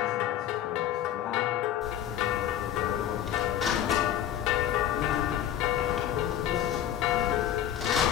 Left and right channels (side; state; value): right; quieter; 11.0 dB